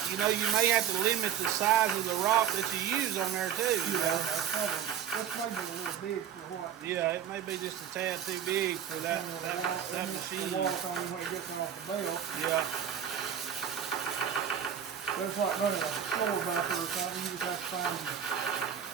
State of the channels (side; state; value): left; quieter; 9.0 dB